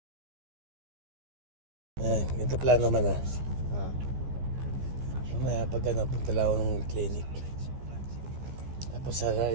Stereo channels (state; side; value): late; left; 15 ms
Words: Ito plano naman Mamaya pag punta lang ako ng clinic. Tapos